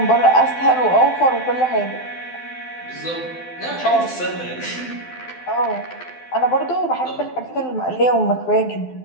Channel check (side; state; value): right; late; 12 ms